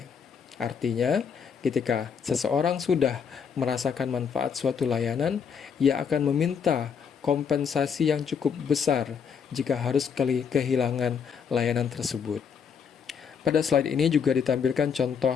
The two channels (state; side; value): quieter; right; 6.7 dB